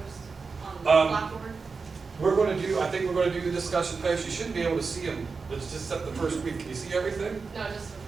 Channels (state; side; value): quieter; left; 4.7 dB